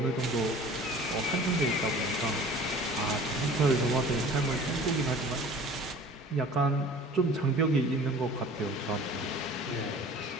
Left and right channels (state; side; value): normal; both; correlation 0.45